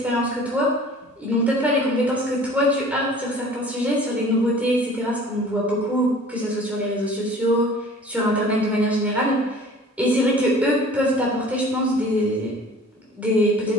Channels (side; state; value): both; normal; correlation 0.47